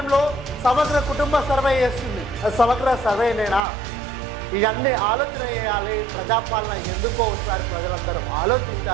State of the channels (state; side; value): drops out; left; at 3.7 s